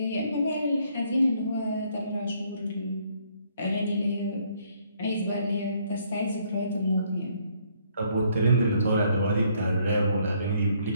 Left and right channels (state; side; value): inverted; both; correlation -0.67